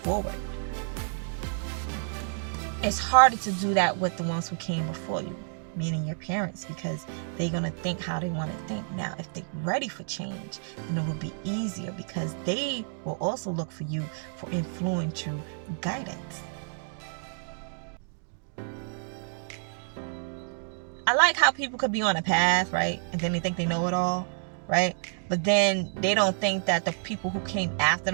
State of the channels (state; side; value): silent; left; digital silence